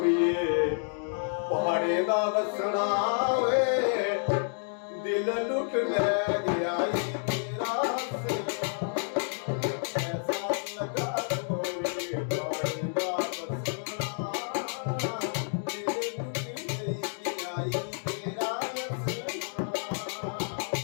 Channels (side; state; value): right; silent; 58 dB below the other